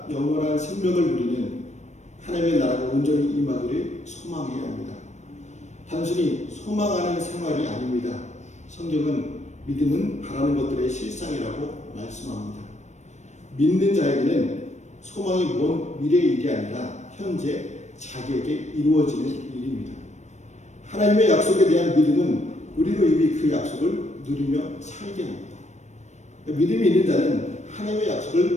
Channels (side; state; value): right; late; 0.34 ms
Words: 영원한 생명을 누리는 하나님의 나라가 온전히 임하기를 소망해야 합니다. 단순히 소망하는 생활이 아닙니다. 성경은 믿음은 바라는 것들의 실상이라고 말씀합니다. 믿는 자에게는 소망이 먼 미래의 일이 아니라 현재 자기에게 이루어지는 일입니다. 하나님의 약속에 대한 믿음은 우리로 이미 그 약속을 누리며 살게 합니다. 믿음이 있는 자는 하나님의